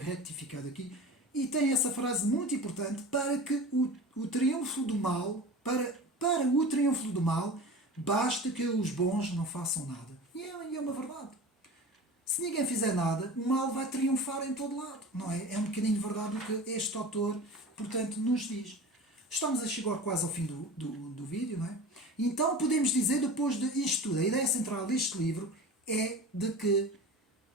aqui, e tem essa frase muito importante para que o triunfo do mal, para o triunfo do mal, basta que os bons não façam nada. E é uma verdade. Se ninguém fizer nada, o mal vai triunfar em todo lado, não é? É um bocadinho verdade o que este autor, portanto, nos diz. Estamos a chegar quase ao fim do vídeo, não é? Então podemos dizer, depois disto tudo, a ideia central deste livro é de que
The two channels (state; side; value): normal; both; correlation 0.34